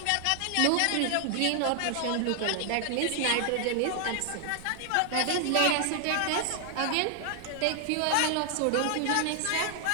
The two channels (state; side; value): different; both; correlation 0.00